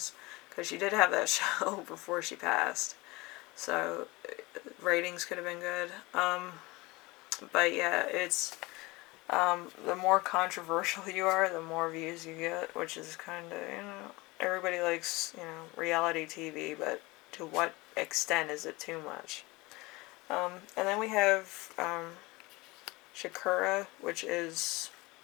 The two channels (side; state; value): right; quieter; 23.0 dB